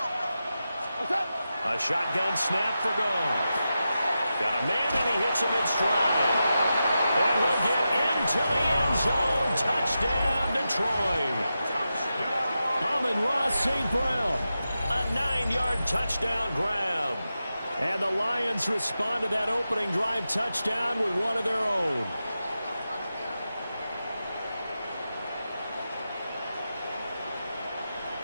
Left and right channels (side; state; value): both; inverted; correlation -0.90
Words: A shotgun snap for Goff. Got a man, and he hits him in stride. And he'll get into the end zone. Touchdown, Detroit. Amon-Ra St. Brown. A 9-yard touchdown grab. And the Lions respond to that opening drive touchdown with one of their own.